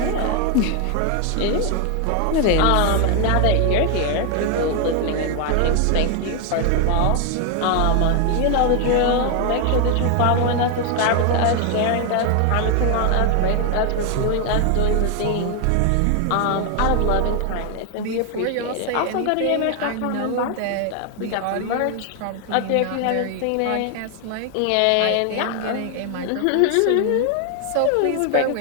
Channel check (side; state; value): both; different; correlation 0.01